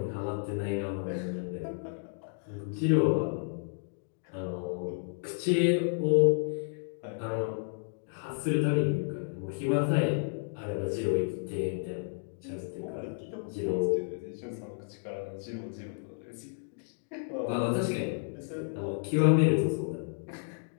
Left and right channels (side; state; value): right; silent; digital silence